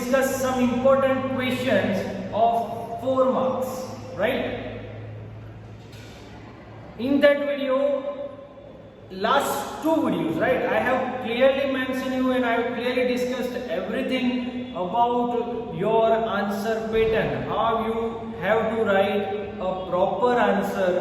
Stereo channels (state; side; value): identical; both; correlation 1.00